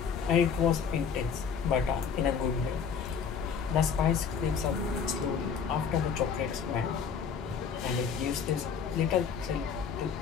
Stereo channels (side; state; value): right; quieter; 6.6 dB